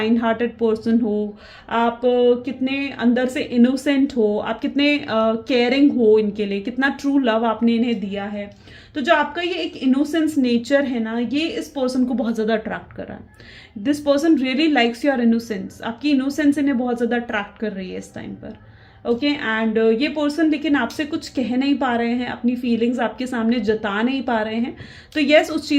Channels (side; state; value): both; identical; correlation 1.00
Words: हार्टेड पर्सन हो, आप कितने अंदर से इनोसेंट हो, आप कितने केयरिंग हो इनके लिए, कितना ट्रू लव आपने इन्हें दिया है। तो जो आपका ये एक इनोसेंस नेचर है ना, ये इस पर्सन को बहुत ज़्यादा अट्रैक्ट कर रहा है। This person really likes your innocence. आपकी इनोसेंस इन्हें बहुत ज़्यादा अट्रैक्ट कर रही है इस टाइम पर, ओके। एंड ये पर्सन लेकिन आपसे कुछ कह नहीं पा रहे हैं, अपनी फीलिंग्स आपके सामने जता नहीं पा रहे हैं। तो यस, उस